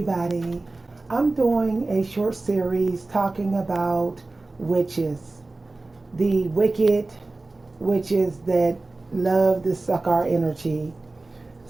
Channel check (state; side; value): quieter; left; 3.2 dB